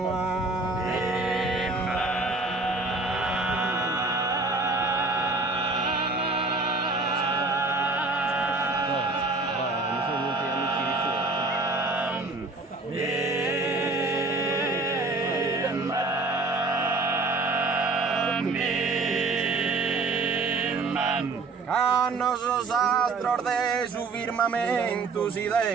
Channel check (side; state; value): left; quieter; 3.5 dB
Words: Hanno sos astros de su firmamento si